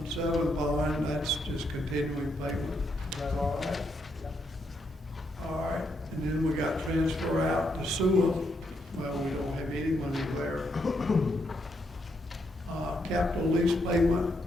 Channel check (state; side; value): normal; both; correlation 0.78